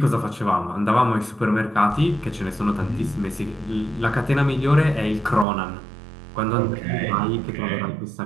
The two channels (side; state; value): left; drops out; at 5.5 s